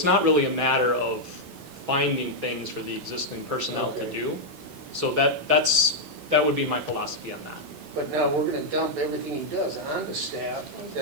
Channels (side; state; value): left; late; 1.9 ms